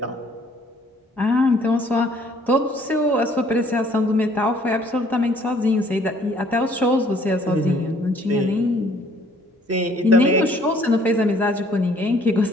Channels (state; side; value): normal; both; correlation 0.60